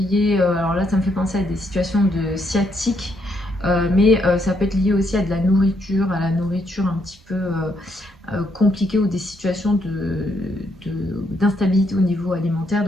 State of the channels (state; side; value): normal; both; correlation 0.75